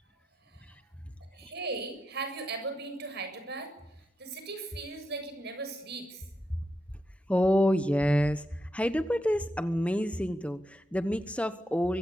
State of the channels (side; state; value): both; normal; correlation 0.85